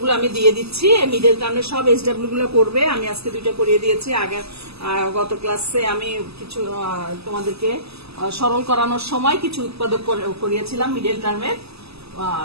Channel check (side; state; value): left; late; 0.79 ms